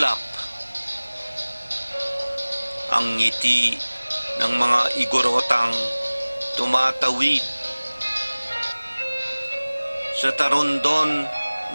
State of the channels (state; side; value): inverted; both; correlation -1.00